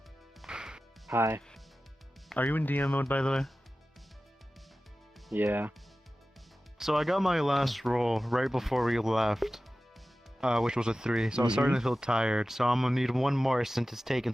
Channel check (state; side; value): normal; both; correlation 0.95